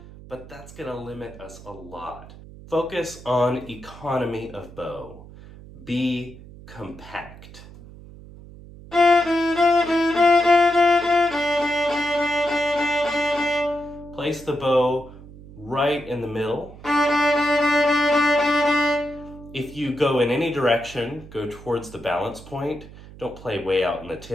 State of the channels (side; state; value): right; noise; hum, 18 dB below the sound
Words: But that's going to limit us a lot. Focus on economy of bow. Be compact. Place the bow right in the middle. If you go in any direction, go towards the balance point. Don't play way out in the